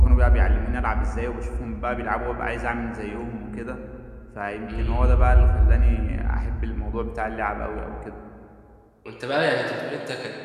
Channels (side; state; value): both; identical; correlation 1.00